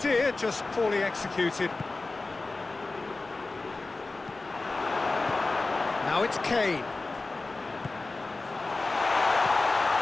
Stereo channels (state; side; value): quieter; right; 3.4 dB